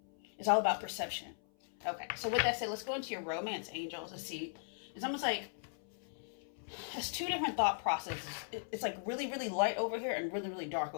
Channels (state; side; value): silent; right; 52 dB below the other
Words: It's all about perception. Okay, so with that said, let's go into your romance angels to see. It's almost like, it's two different thought processes. It's like really, really light over here and really, really dark